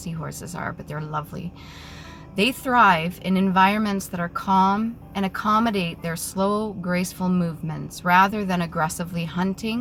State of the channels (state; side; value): identical; both; correlation 1.00